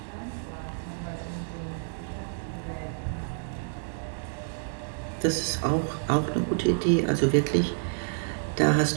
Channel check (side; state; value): left; silent; digital silence